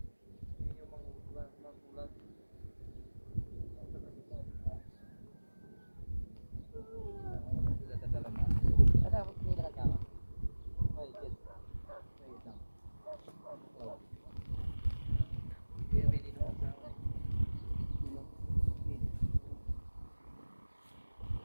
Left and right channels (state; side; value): inverted; both; correlation -1.00